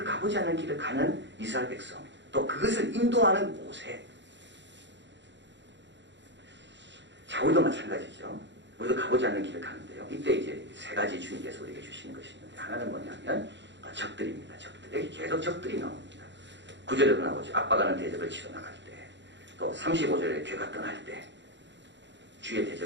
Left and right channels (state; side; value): late; left; 0.52 ms